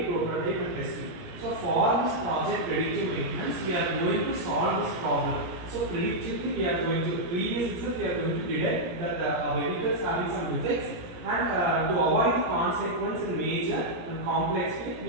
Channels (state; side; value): late; left; 17 ms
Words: prototype and testing. So for this project predictive maintenance, we are going to solve this problem. So predictively we are going to, previous itself we are going to detect that our vehicle is having some defects, and to avoid the consequence in major and complex way,